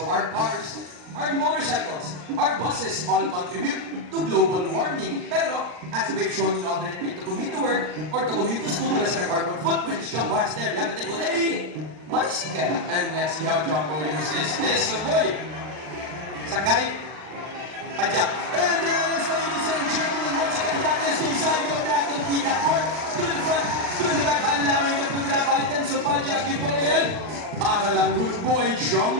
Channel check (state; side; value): late; left; 39 ms